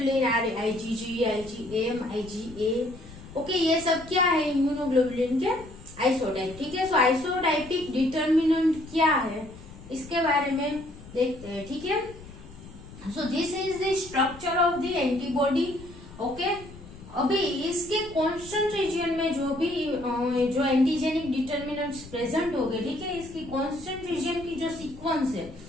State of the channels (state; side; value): noise; left; rumble, 18 dB below the sound